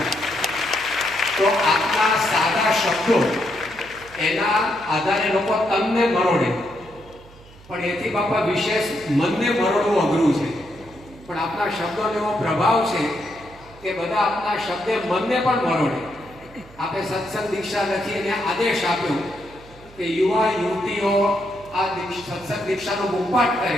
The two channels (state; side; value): noise; right; hum, 22 dB below the sound